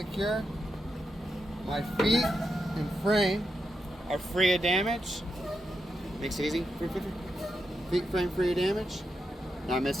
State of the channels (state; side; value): normal; both; correlation 0.86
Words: My feet and frame are free of damage. Makes it easy. Feet frame free of damage. Not